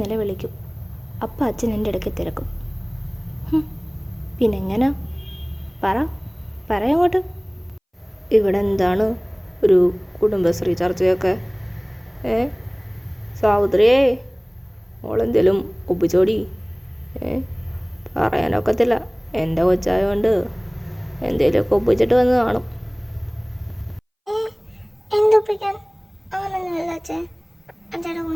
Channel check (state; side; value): identical; both; correlation 1.00